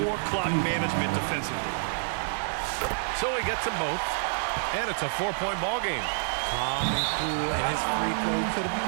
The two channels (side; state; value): left; silent; digital silence